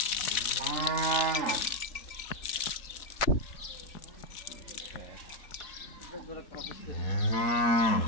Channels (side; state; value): right; late; 4.0 ms